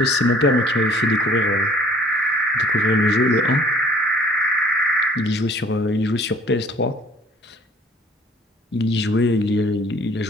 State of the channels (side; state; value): both; normal; correlation 0.53